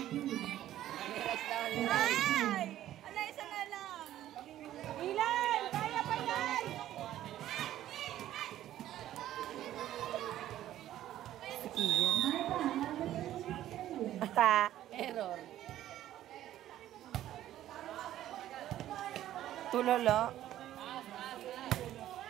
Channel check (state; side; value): quieter; left; 12.9 dB